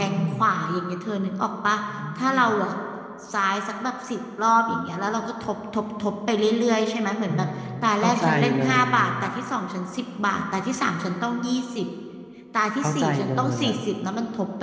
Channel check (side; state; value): both; identical; correlation 1.00